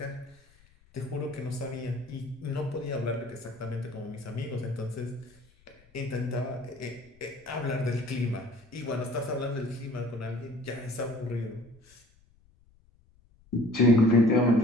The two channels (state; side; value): noise; left; rumble, 29 dB below the sound